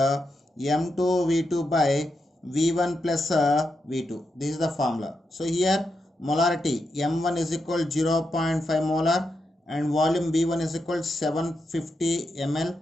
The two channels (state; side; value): normal; both; correlation 0.85